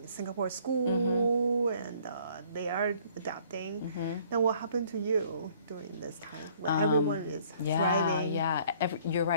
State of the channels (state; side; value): inverted; both; correlation -0.58